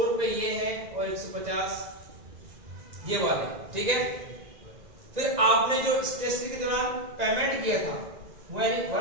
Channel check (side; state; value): left; late; 1.9 ms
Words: रुपए ये है और 150 ये वाले। ठीक है। फिर आपने जो स्टेशनरी के दौरान पेमेंट किया था, वो यानी